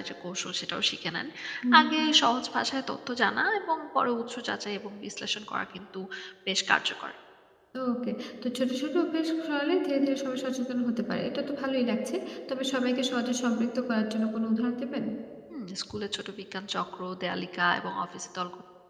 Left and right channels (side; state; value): both; identical; correlation 1.00